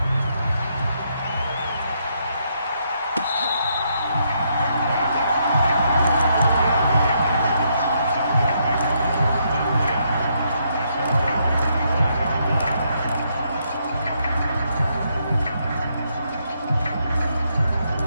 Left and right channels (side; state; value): both; inverted; correlation -0.76